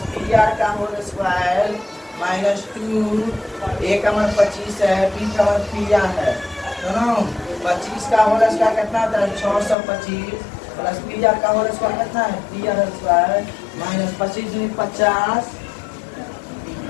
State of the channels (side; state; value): right; drops out; at 9.8 s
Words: B R का होल स्क्वायर माइनस 2, ए का मान 25 है, बी का मान पी आर है, दोनों 25 का होल स्क्वायर कितना होता है 625 प्लस पी आर का होल स्क्वायर कितना है पी आर स्क्वायर माइनस 25 50।